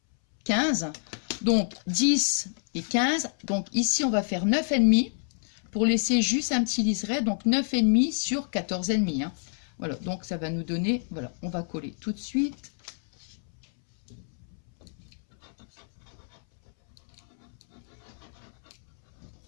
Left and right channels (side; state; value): right; silent; 59 dB below the other